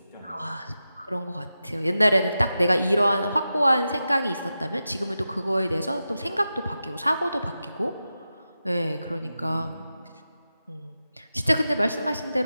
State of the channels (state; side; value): inverted; both; correlation -0.91